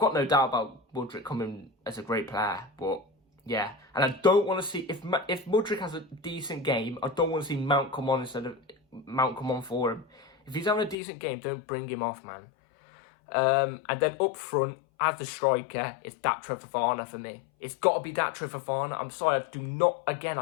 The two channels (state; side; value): drops out; right; at 11.0 s